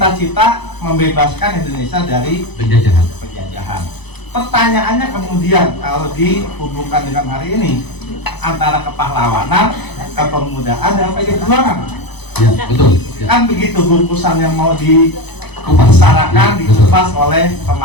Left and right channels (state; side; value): late; right; 0.99 ms